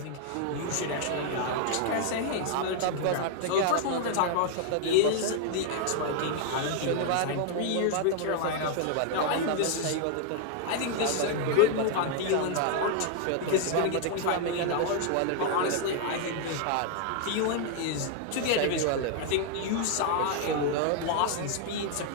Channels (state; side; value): different; both; correlation 0.00